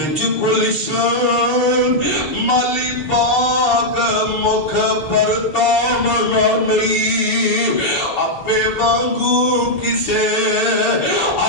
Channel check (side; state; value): right; late; 7.0 ms